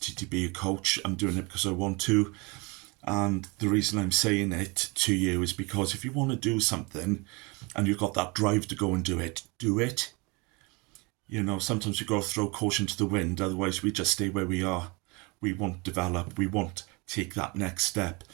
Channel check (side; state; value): left; quieter; 28.1 dB